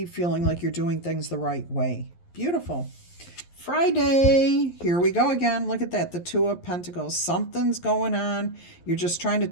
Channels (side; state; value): right; late; 11 ms